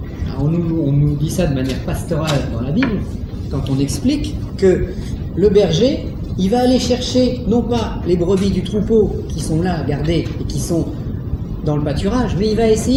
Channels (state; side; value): identical; both; correlation 1.00